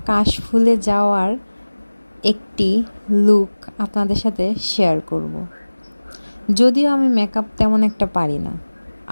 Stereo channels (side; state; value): both; inverted; correlation -1.00